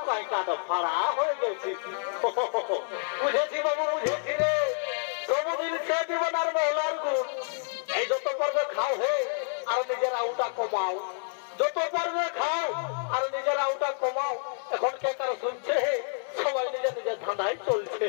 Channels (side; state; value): right; silent; 59 dB below the other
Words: কাই কাটা ফাড়া হয়ে গেছিস বুঝেছি বাবু বুঝেছি রে সবুদিন সে জীবনার মহলার গুণ এই যত পারবে খাও হে আর নিজের আউটা কমাও যত পারবে খাও আর নিজের আউটা কমাও এখন কে কারো শুনছে হে সবাই নিজের নিজের ধাঁধায় চলছে